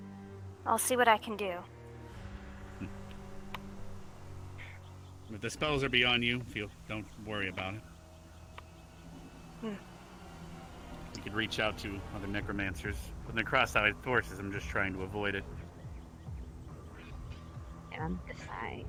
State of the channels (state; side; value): identical; both; correlation 1.00